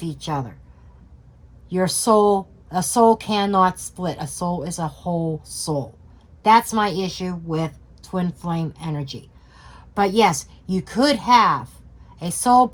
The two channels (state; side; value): identical; both; correlation 1.00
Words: each other. A soul cannot split. A soul is a whole soul. That's my issue with twin flame energy. But yes, you could have a soul